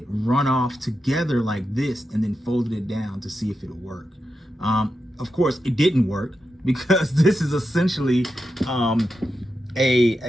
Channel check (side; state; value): both; normal; correlation 0.88